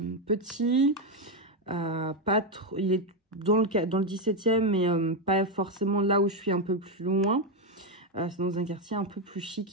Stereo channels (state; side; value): normal; both; correlation 0.06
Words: petit. Pas trop, il est dans le 17e, mais pas forcément là où je suis un peu plus loin. C'est dans un quartier un peu plus